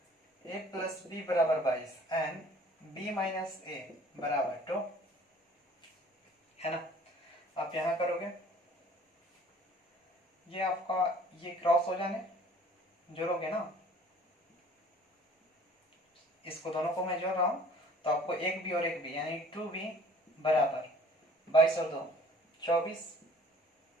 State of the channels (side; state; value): both; normal; correlation 0.52